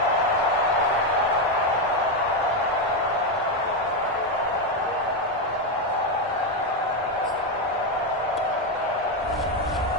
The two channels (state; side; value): normal; both; correlation 0.07